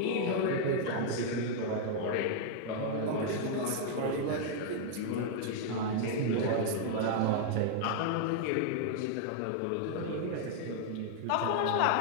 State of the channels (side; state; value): both; different; correlation -0.01